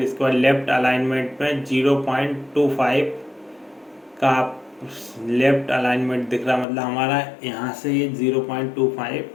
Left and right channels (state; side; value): drops out; right; at 6.7 s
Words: इसके बाद लेफ्ट अलाइनमेंट में 0.25 का लेफ्ट अलाइनमेंट दिख रहा, मतलब हमारा यहाँ से ये 0.25